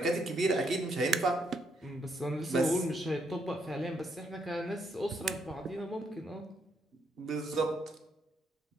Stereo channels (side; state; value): both; normal; correlation 0.75